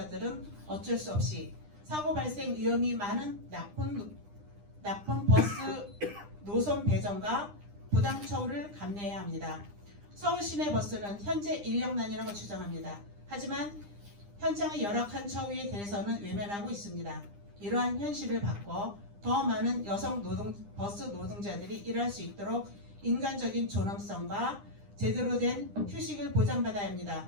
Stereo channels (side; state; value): left; late; 9.9 ms